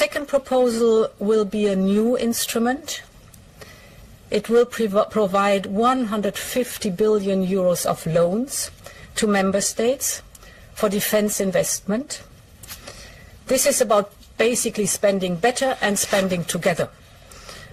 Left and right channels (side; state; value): both; identical; correlation 1.00